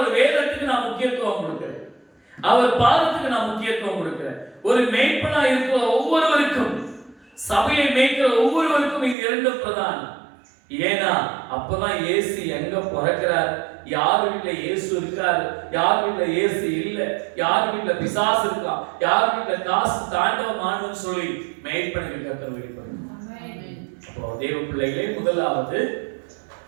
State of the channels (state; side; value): drops out; left; at 9.2 s